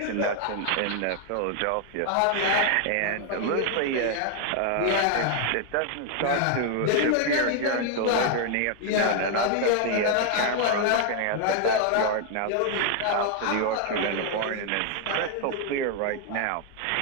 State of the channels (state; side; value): different; both; correlation 0.00